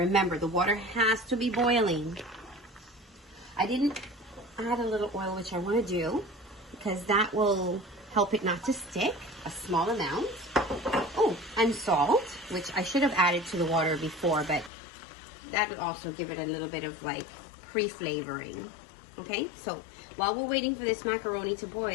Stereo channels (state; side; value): drops out; right; at 14.7 s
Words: the water has to be boiling. I didn't add a little oil, which I want to do, because that will help it not to stick, a small amount. Oh, and salt, which I should have added to the water before, but that would also give it a little bit of like pre-flavoring. Okay, so while we're waiting for this macaroni to